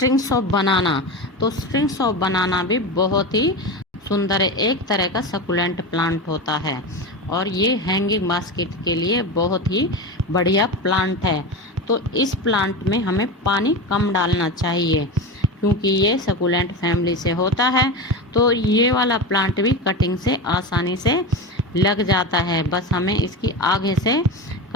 ऑफ बनाना। तो स्ट्रिंग्स ऑफ बनाना भी बहुत ही सुंदर एक तरह का सकुलेंट प्लांट होता है और ये हैंगिंग बास्केट के लिए बहुत ही बढ़िया प्लांट है। तो इस प्लांट में हमें पानी कम डालना चाहिए क्योंकि ये सकुलेंट फैमिली से होता है। तो ये वाला प्लांट भी कटिंग से आसानी से लग जाता है, बस हमें इसकी आगे से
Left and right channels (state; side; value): normal; both; correlation 0.22